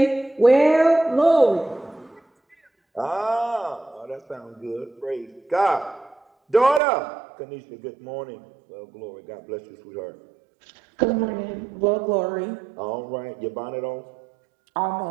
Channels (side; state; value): left; drops out; at 6.8 s